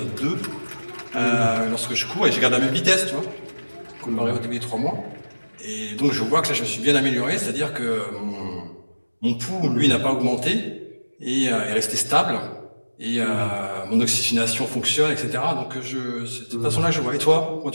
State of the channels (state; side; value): inverted; both; correlation -1.00